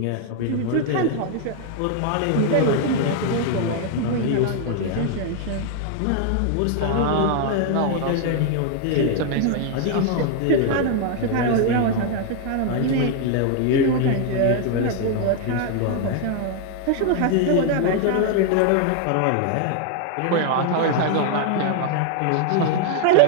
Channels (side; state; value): both; different; correlation 0.00